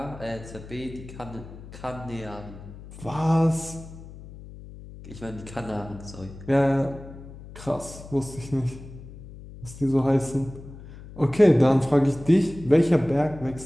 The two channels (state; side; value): noise; left; hum, 16 dB below the sound